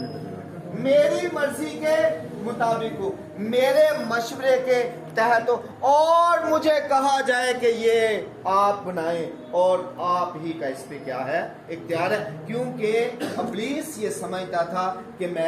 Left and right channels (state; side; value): identical; both; correlation 1.00